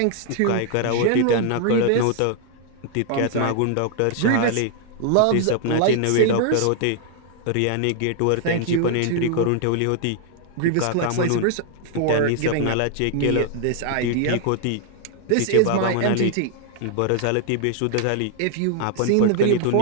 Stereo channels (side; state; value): both; different; correlation 0.00